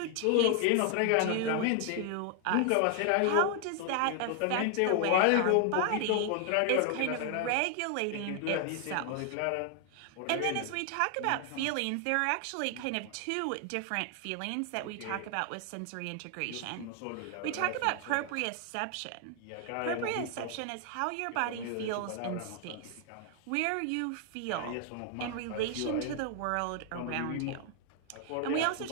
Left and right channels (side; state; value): both; different; correlation 0.00